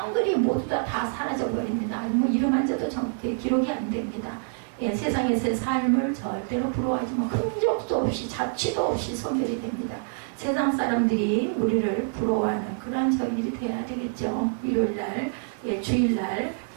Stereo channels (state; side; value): silent; left; digital silence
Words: 모두 다 사라져버립니다. 뭐 이름 한자도 정확히 기록이 안 됩니다. 예, 세상에서의 삶을 절대로 부러워하지 뭐 흔적도 없이 자취도 없이 소멸이 됩니다. 세상 사람들이 우리를 부러워하는 그러한 저일이 돼야 되겠죠. 일요일날, 예, 주일날